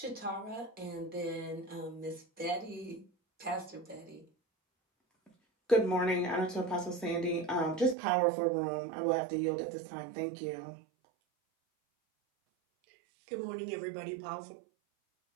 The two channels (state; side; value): drops out; left; at 8.0 s